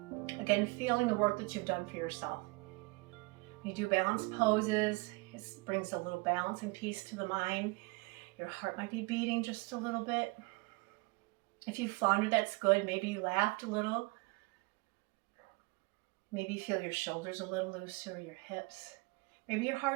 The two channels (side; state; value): left; quieter; 26.7 dB